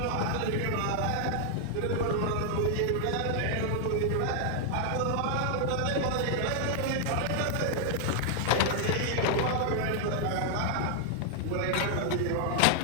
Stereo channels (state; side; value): different; both; correlation 0.00